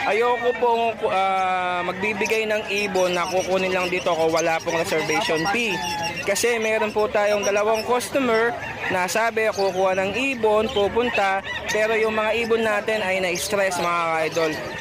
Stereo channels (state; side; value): identical; both; correlation 1.00